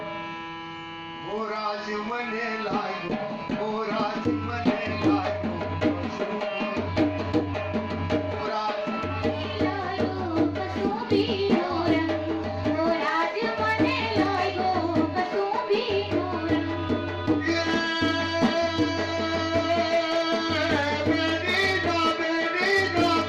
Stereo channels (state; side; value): identical; both; correlation 1.00